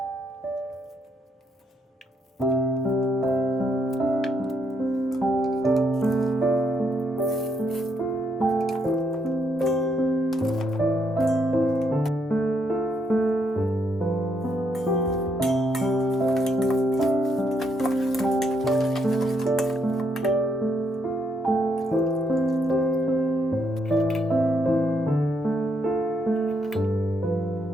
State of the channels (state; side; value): normal; both; correlation 0.75